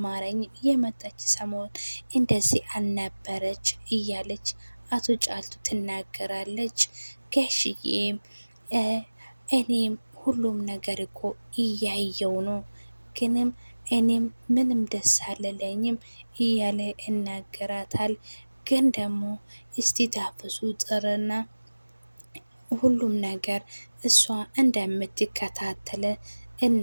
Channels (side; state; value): both; inverted; correlation -1.00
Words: የመጣች ሰሞን እንደዚህ አልነበረች እያለች አቶ ጫልቱ ትናገራለች። ጋሽዬም እኔም ሁሉም ነገር እኮ እያየው ነው ግንም እኔም ምንም ደስ አልለኝም እያለ ይናገራታል። ግን ደግሞ እስቲ ታፈሱ ጥርና ሁሉም ነገር እሷ እንደምትከታተለ